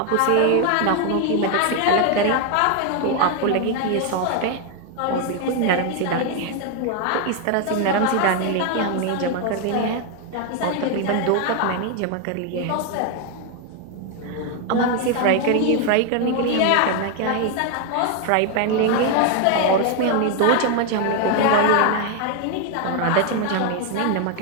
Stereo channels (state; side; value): different; both; correlation 0.01